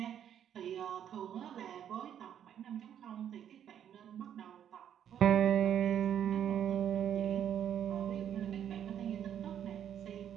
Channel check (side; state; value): left; quieter; 9.6 dB